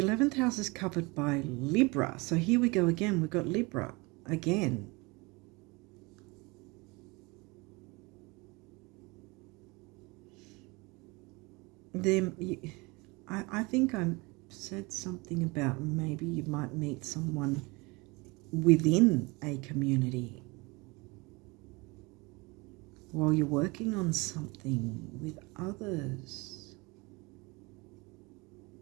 11th house is covered by Libra. So here we go again. We've got Libra again. I think I said something about maybe you might meet someone within a community while you're working on something with others.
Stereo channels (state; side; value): quieter; left; 25.9 dB